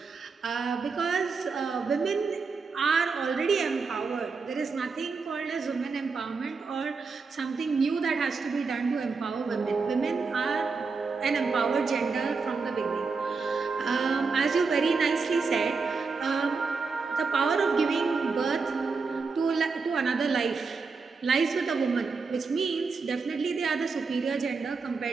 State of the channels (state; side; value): quieter; left; 4.7 dB